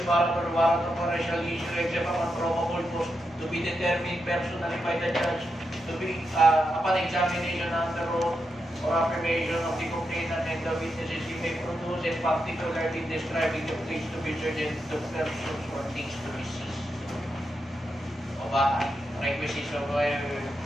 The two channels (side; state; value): both; normal; correlation 0.85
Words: warrant or warrant of arrest shall issue except upon probable cause to be determined personally by the judge to be upon examination under oath or affirmation of the complainant and the witnesses he may produce, and particularly describing the place to be searched and the persons or things to be seized. O ba, requisites of